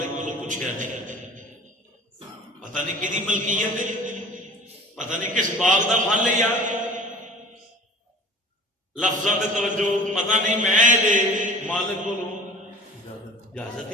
کولوں پوچھیا نہیں پتہ نہیں کدی ملکیت ہے پتہ نہیں کس باغ دا پھل ہے یار لفظاں تے توجہ پتہ نہیں میں دے مالک کولوں اجازت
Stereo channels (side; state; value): both; normal; correlation 0.44